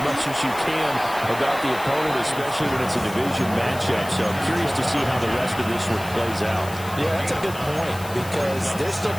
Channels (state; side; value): noise; left; hiss, 15 dB below the sound